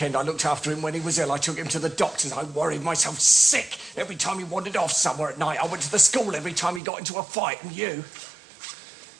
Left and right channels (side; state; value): left; drops out; at 6.8 s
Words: I looked after him when he was ill. I took him to the doctors. I worried myself sick every time he wandered off somewhere at night. I went to the school every time he got into a fight. And you?